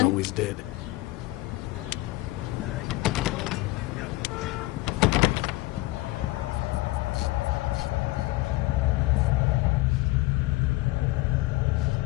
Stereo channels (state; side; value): quieter; right; 20.1 dB